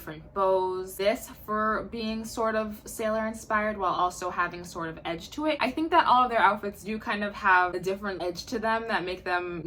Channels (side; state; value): both; identical; correlation 1.00